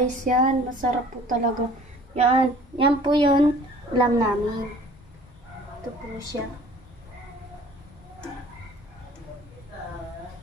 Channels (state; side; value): normal; both; correlation 0.50